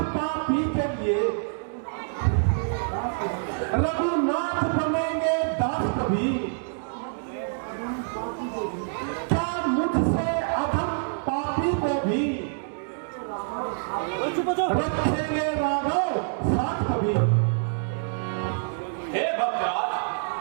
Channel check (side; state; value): left; silent; digital silence